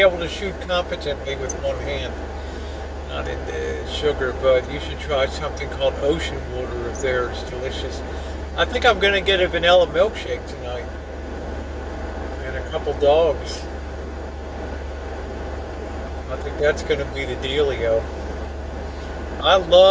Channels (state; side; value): identical; both; correlation 1.00